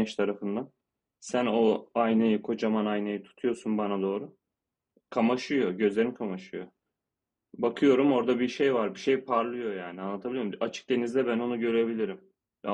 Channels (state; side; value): identical; both; correlation 1.00